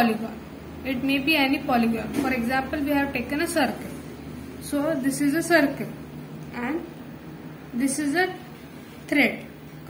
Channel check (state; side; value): identical; both; correlation 1.00